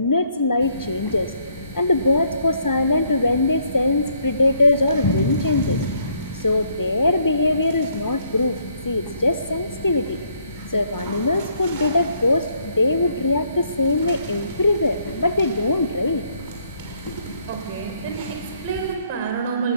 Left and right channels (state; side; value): inverted; both; correlation -0.69